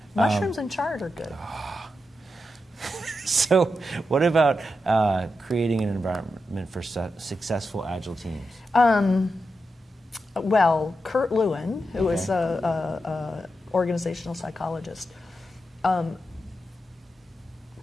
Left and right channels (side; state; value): both; normal; correlation 0.88